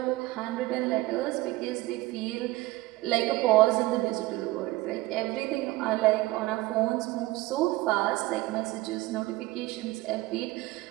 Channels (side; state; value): left; quieter; 19.2 dB